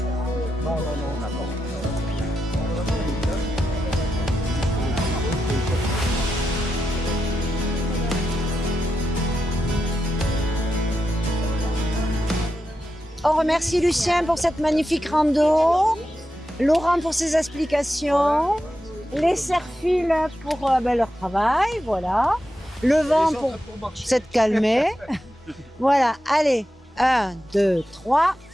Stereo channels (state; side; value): normal; both; correlation 0.88